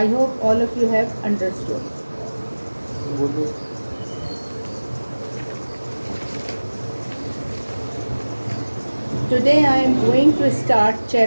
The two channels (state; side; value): inverted; both; correlation -1.00